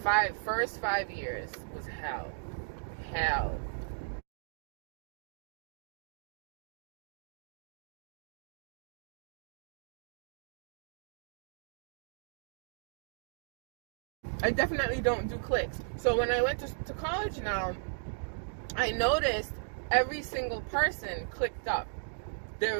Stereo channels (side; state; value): left; silent; digital silence